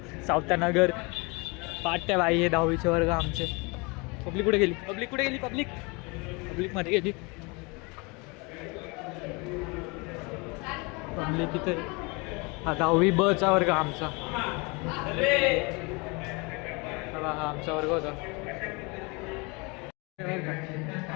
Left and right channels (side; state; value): right; quieter; 28.5 dB